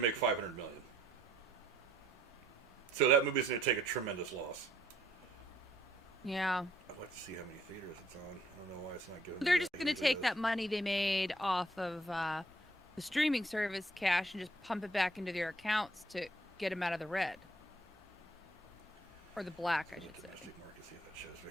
make $500 million. So that movie's going to take a tremendous loss. Yeah. I'd like to see how many theaters it's on. I don't know why it's not giving me They're that just going to take that money they made off of the streaming service cash and just pump it back into their accounts to get them out of the red. Or the black, I should say. Domestic market, see if that shows me.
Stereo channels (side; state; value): both; normal; correlation 0.65